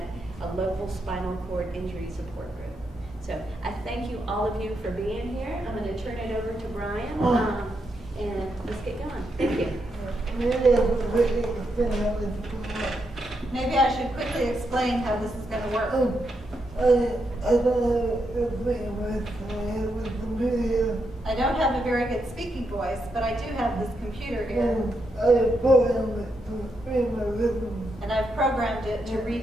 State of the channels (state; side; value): normal; both; correlation 0.82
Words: a local spinal cord injury support group. So I thank you, all of you, for being here. I'm going to turn it over to Brian, and let's get going. Thank you. Maybe I should quickly explain how this is going to work. I don't have a very good speaking voice, but I do have this computer here. And I've programmed it to